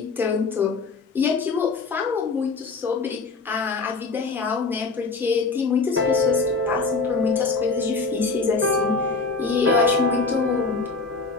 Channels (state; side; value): quieter; right; 4.2 dB